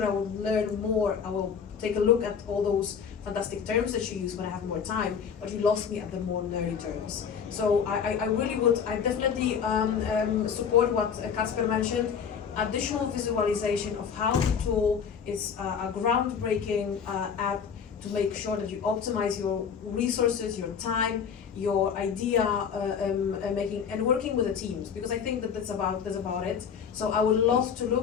I will learn more. I will take a look at all those fantastic terms that you use when I have more time, but you lost me at the more nerdy terms. So I really would, I definitely support what Kacper mentioned, additional visualization of how the tool is a groundbreaking app to make sure that you optimize your resources, your time, your idea making, and working with the teams, because I think that that's about it. So I would love to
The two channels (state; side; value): quieter; right; 7.0 dB